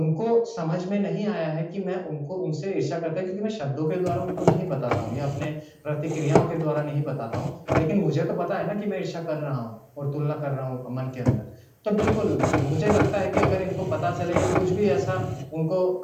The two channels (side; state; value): both; identical; correlation 1.00